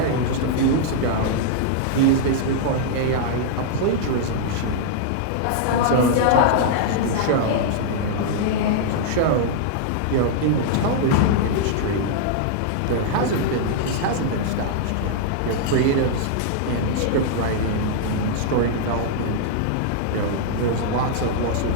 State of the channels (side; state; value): both; different; correlation -0.01